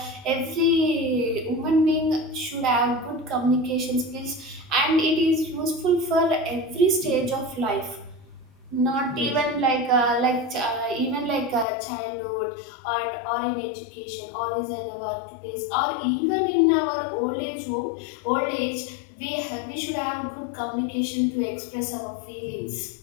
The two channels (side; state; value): right; drops out; at 11.7 s